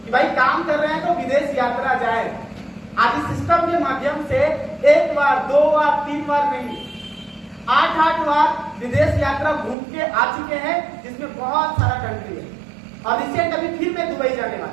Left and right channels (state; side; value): drops out; left; at 9.8 s